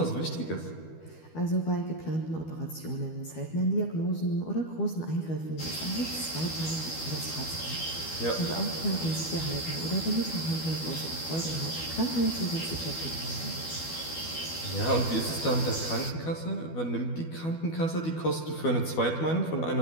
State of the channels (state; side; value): late; right; 12 ms